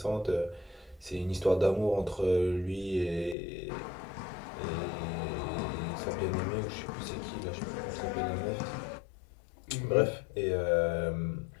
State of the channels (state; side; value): drops out; right; at 3.4 s